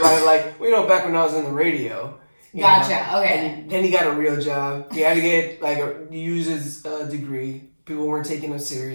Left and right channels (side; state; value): both; inverted; correlation -1.00